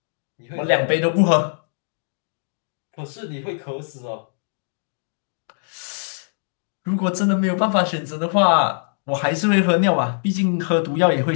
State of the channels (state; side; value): silent; right; digital silence